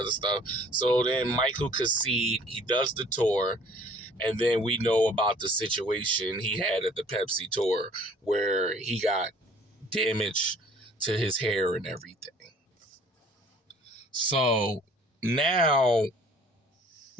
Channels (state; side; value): normal; both; correlation 0.53